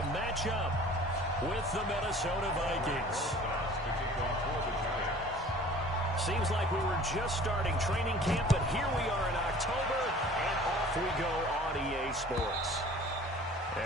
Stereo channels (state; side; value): normal; both; correlation 0.48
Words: match up with the Minnesota Vikings. Seems like we were just starting training camp, but here we are in October, and off we go on EA Sports.